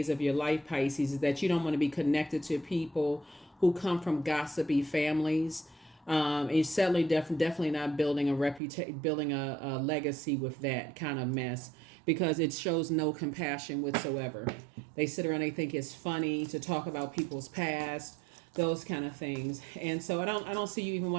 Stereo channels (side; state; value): left; drops out; at 8.6 s